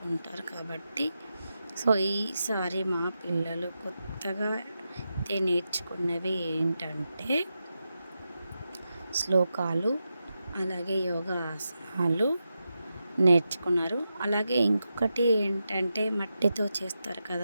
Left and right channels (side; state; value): both; inverted; correlation -0.89